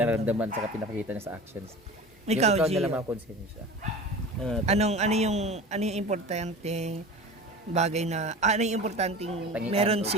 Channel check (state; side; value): normal; both; correlation 0.35